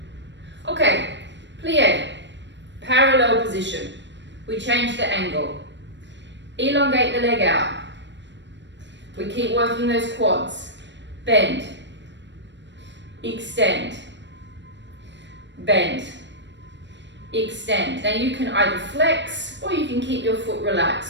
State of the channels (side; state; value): left; late; 0.53 ms